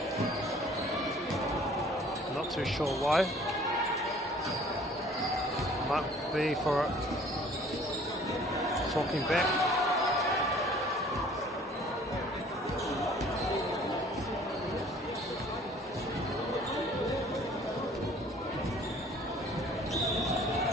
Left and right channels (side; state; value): both; normal; correlation 0.53